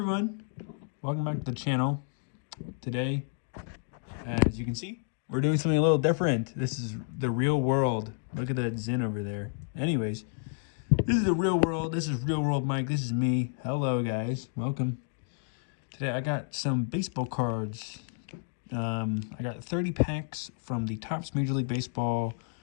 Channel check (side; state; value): right; silent; 57 dB below the other